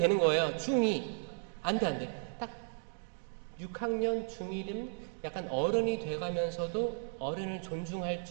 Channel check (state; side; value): silent; left; digital silence